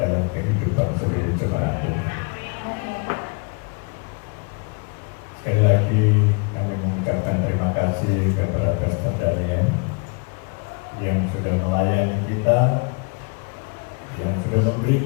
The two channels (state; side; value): quieter; right; 33.9 dB